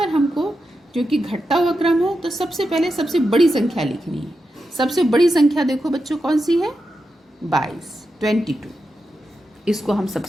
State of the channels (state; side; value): normal; both; correlation 0.88